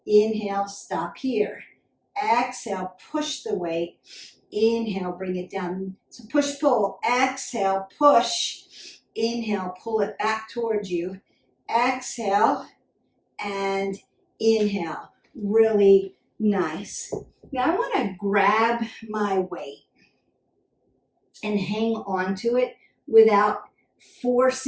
Inhale, stop here. Exhale, push the weight. Inhale, bring it down. So push, pull. Exhale, push. Inhale, pull it back towards you. Exhale, and inhale. Really nice. Now I want to grab my weight and hang on to it without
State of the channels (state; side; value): identical; both; correlation 1.00